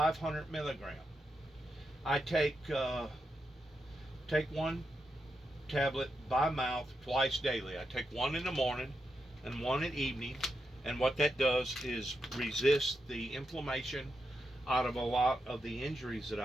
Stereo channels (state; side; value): normal; both; correlation 0.86